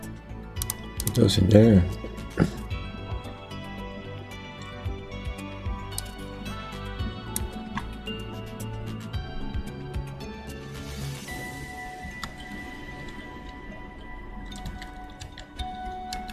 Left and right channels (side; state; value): both; identical; correlation 1.00